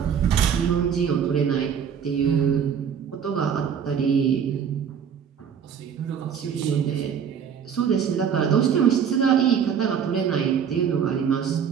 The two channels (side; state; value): left; quieter; 7.6 dB